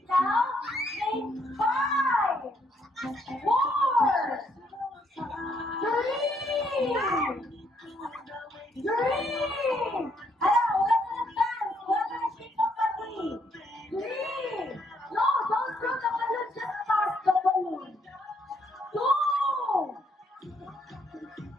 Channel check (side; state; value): both; normal; correlation 0.72